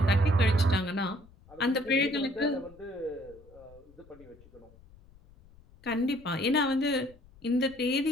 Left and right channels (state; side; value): noise; left; rumble, 25 dB below the sound